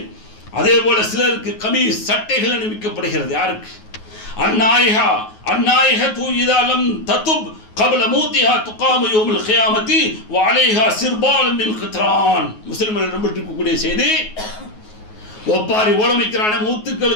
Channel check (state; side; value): late; right; 9.4 ms